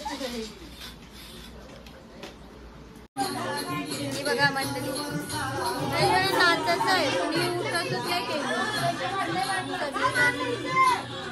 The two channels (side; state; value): both; identical; correlation 1.00